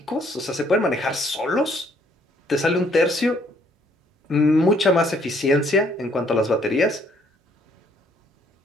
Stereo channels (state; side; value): normal; both; correlation 0.65